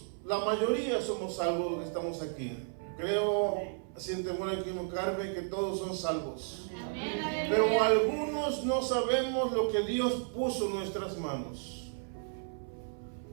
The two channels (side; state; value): left; silent; 56 dB below the other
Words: la mayoría somos salvos los que estamos aquí? Creo, sin temor a equivocarme, que todos son salvos. Pero algunos no sabemos lo que Dios puso en nuestras manos.